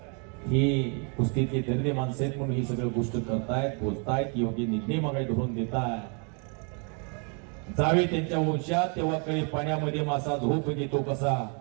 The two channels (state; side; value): quieter; left; 37.6 dB